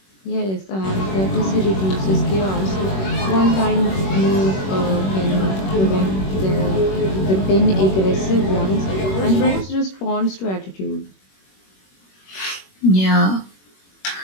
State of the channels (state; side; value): late; right; 21 ms